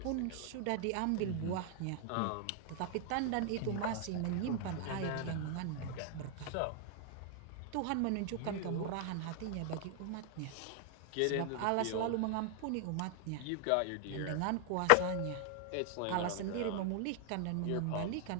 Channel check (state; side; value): different; both; correlation 0.00